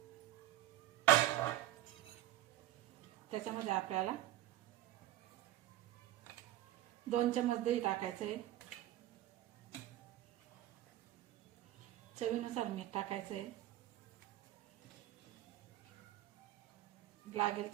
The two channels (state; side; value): quieter; left; 14.6 dB